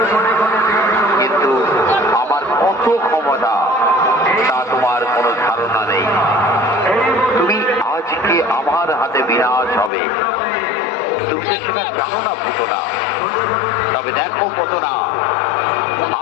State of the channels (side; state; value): right; drops out; at 9.9 s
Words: কিন্তু আমার কত ক্ষমতা তা তোমার কোনো ধারণা নেই। তুমি আজকে আমার হাতে বিনাশ হবে, তুমি তো সেটা জানো না পুতনা। তবে দেখো পুতনা,